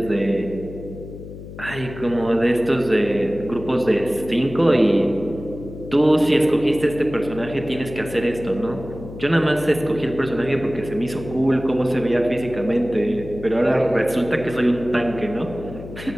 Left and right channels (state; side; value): noise; left; hum, 13 dB below the sound